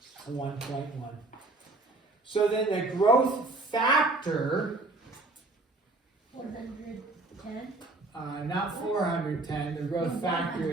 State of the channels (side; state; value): left; quieter; 3.0 dB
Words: 1.1. So then the growth factor, 410. Not 410, the growth factor